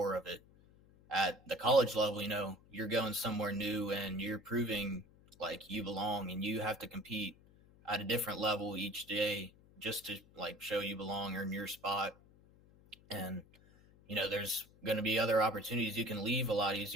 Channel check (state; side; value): noise; left; hum, 26 dB below the sound